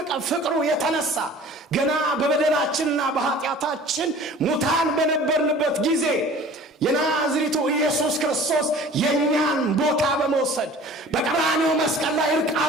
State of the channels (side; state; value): both; normal; correlation 0.45